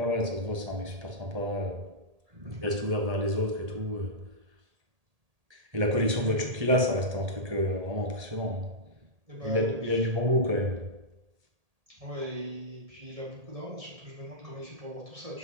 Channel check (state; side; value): late; left; 1.8 ms